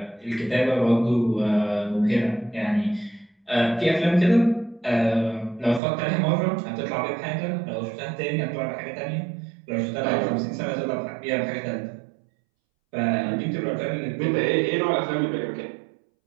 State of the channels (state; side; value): drops out; left; at 5.8 s